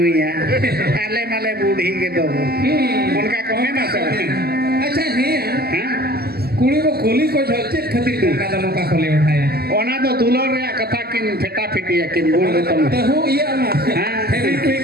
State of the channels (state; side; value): late; left; 0.46 ms